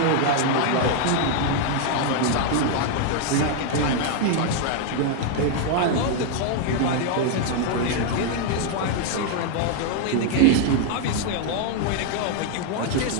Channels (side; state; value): both; different; correlation 0.00